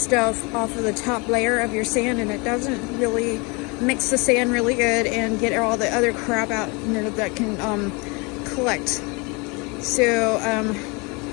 off of the top layer of your sand, and it doesn't really mix the sand really good and get all the other crap out, that can collect. So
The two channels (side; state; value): right; quieter; 28.9 dB